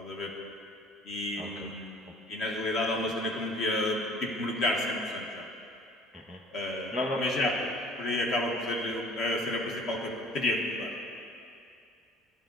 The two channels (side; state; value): both; normal; correlation 0.51